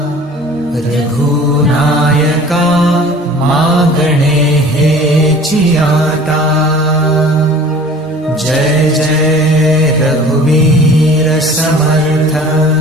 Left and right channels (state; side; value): normal; both; correlation 0.46